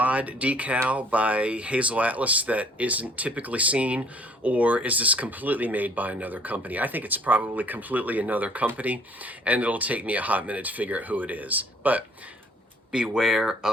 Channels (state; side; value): normal; both; correlation 0.58